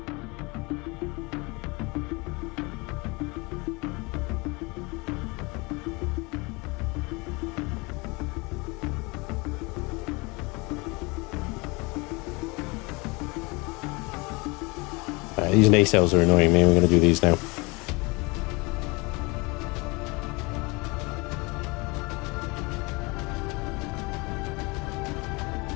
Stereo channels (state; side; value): quieter; right; 26.6 dB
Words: These nacelles are annoying me. We're going to do these now.